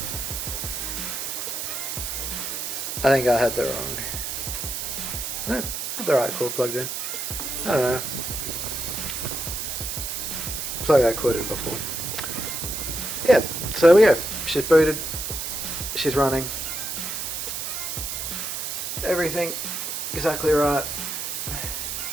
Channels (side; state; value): right; noise; hiss, 4 dB below the sound